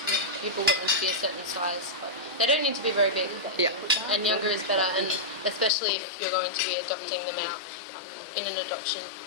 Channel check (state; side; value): drops out; right; at 5.7 s